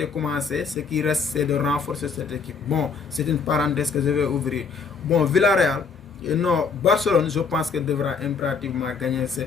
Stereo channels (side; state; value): right; quieter; 5.2 dB